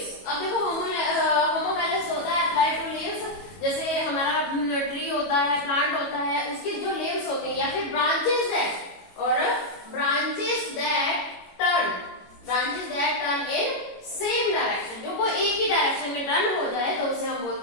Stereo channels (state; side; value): late; right; 22 ms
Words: अब देखो होमोमेलस होता है अप्लाइड टू लीव्स, जैसे हमारा ट्री होता है, प्लांट होता है, उसकी जो लीव्स होती है या फिर branches that turn in same direction, जो वो एक ही डायरेक्शन में टर्न हो जाए तो उसे हम